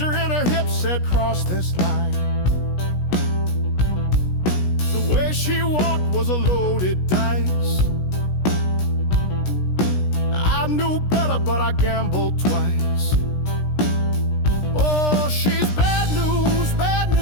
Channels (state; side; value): late; right; 16 ms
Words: in her hips said, cross this line. The way she walked was a loaded dice. I knew better, but I gambled twice. Oh, she's bad news, bad